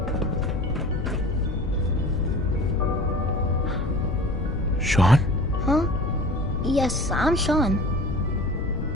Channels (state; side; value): noise; left; rumble, 4 dB below the sound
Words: Sean? Huh? Yes, I'm Sean.